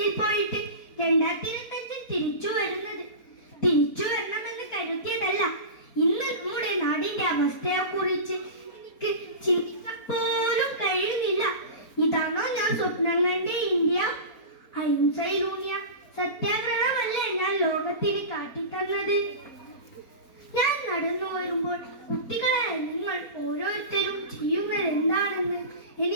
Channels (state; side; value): late; right; 4.1 ms